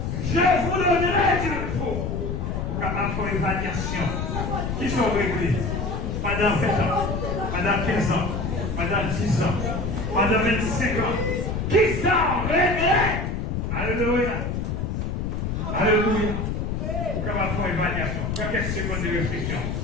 Je vous donnerai du repos. Vous capable de faire une évaluation. Qui sont réglés pendant 20 ans, pendant 15 ans, pendant 10 ans, pendant 25 ans. Qui sont réglés? Alléluia. Alléluia. Vous capable de faire une évaluation. Quelques secondes de réflexion.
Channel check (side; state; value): left; noise; rumble, 2 dB below the sound